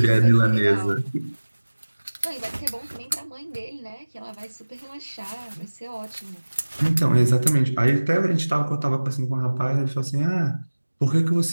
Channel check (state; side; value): inverted; both; correlation -1.00